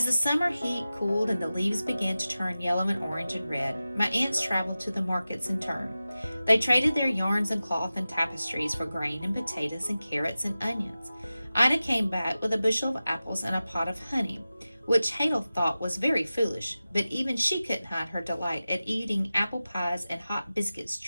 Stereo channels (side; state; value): both; inverted; correlation -0.95